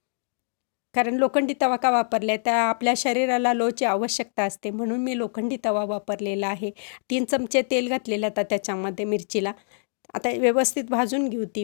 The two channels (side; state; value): right; silent; digital silence